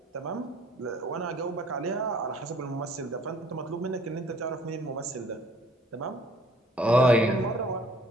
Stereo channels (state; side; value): normal; both; correlation 0.57